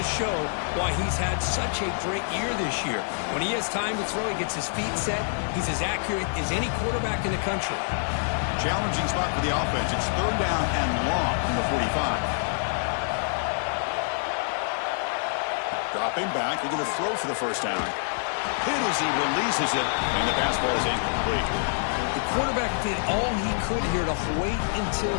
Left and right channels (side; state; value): right; silent; digital silence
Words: show why he's had such a great year this year. When he has time to throw, he gets his feet set. He's as accurate as any quarterback in the country. Challenging spot for the offense. It's 3rd down and long from the 45. Dropping back, looking to throw for the 1st down. Hit as he releases it, and the pass ball is incomplete. The quarterback did all he could here to wait until